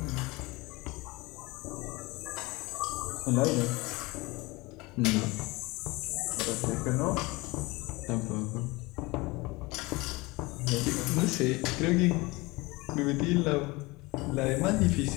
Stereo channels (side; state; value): right; quieter; 23.3 dB